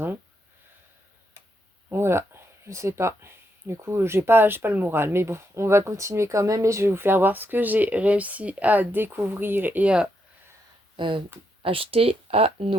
Voilà, je sais pas. Du coup, j'ai pas le moral. Mais bon, on va continuer quand même et je vais vous faire voir ce que j'ai réussi à découvrir et à euh, acheter à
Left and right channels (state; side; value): normal; both; correlation 0.79